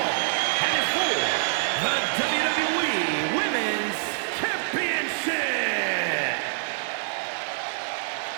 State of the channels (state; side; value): silent; left; digital silence